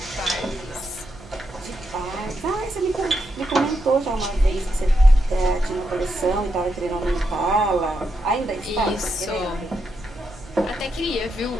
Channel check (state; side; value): noise; right; hum, 20 dB below the sound